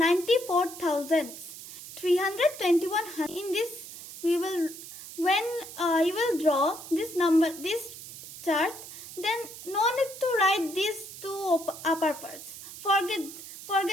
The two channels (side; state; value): right; noise; hiss, 13 dB below the sound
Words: 321. In this, we will, when you will draw this number, this chart, then no need to write these two upper parts.